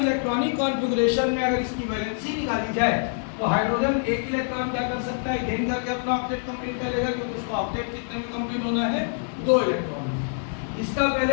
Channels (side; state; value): right; silent; digital silence